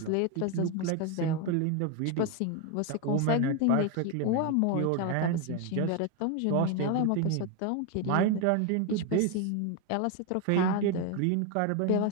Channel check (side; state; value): both; different; correlation 0.01